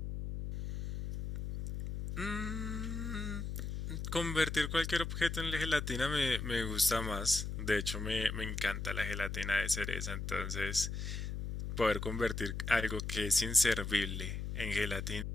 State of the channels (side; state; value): left; noise; hum, 4 dB below the sound